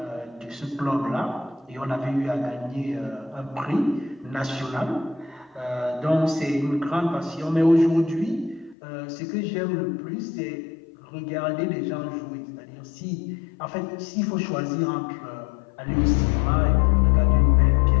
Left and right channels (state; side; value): drops out; right; at 8.8 s